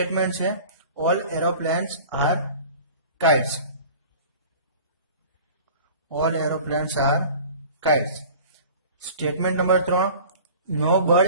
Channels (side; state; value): both; inverted; correlation -0.43